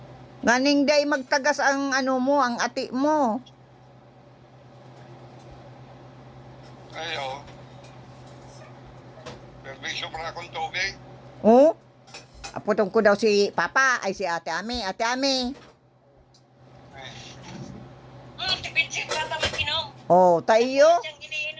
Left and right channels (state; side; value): identical; both; correlation 1.00